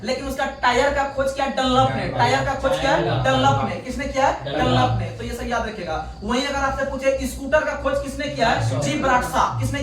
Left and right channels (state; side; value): identical; both; correlation 1.00